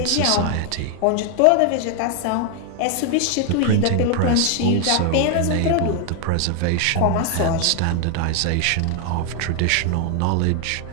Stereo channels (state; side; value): different; both; correlation 0.00